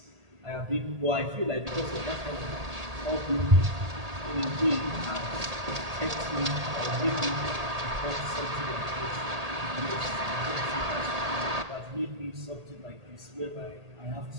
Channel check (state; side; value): late; left; 1.8 ms